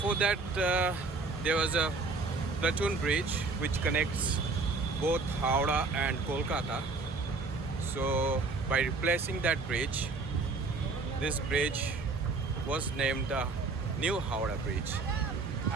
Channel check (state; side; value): quieter; left; 4.0 dB